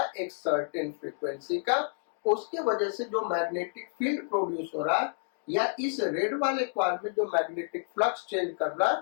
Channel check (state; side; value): silent; right; digital silence